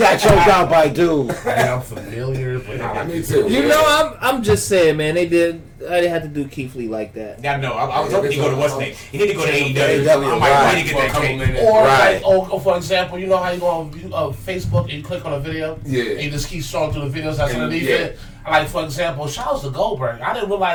choked out by dude. I'm familiar, but me too. You know, I'm just saying, man. I didn't have to do Keith Lee like that. Yeah, no, I was hoping he'd go to what's name. He need to go to AEW. I might need to get that cake. Or for example, you know how you go on Facebook and you click on a video? Yeah. And you just keep scrolling through the videos that's underneath it. Like, for example, shout out to Goldberg. I didn't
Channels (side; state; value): both; identical; correlation 1.00